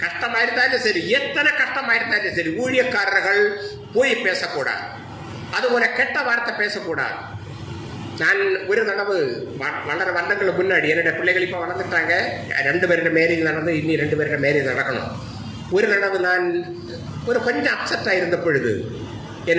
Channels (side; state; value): both; identical; correlation 1.00